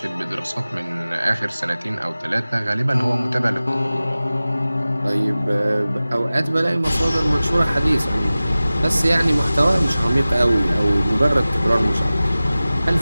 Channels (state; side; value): inverted; both; correlation -0.97